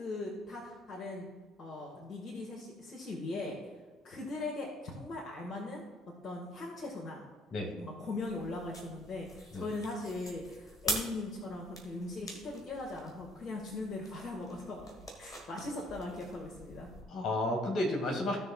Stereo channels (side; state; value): both; normal; correlation 0.63